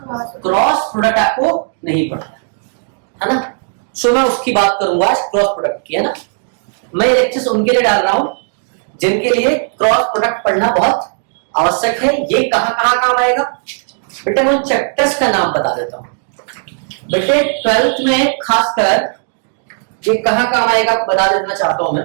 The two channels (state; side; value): silent; left; digital silence